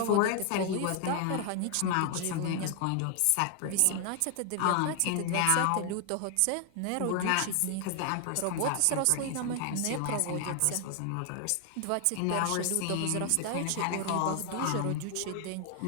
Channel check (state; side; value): different; both; correlation 0.00